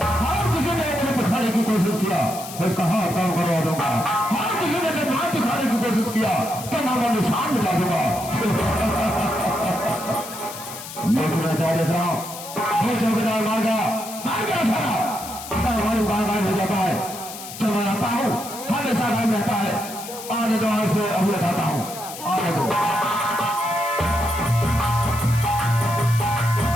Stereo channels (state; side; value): noise; left; hiss, 12 dB below the sound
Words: हर किसी ने मुझे दिखाने की कोशिश किया मैं इसका हाथ काम करवा दूंगा। हर किसी ने जब नाम दिखाने की कोशिश किया तो नाम निशान मिला दूंगा। लेकिन मैं क्या देख रहा हूँ ये चौकीदार मार गया सारा हमारी गायब हो जाता है। जब मैं आता हूँ हमेशा गायब रहता है। आने दो से अभी बताता हूँ आने दो।